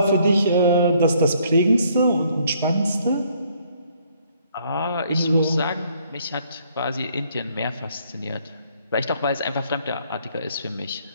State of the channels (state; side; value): inverted; both; correlation -0.65